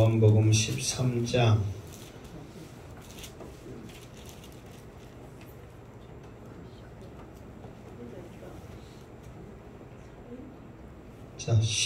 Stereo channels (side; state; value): both; identical; correlation 1.00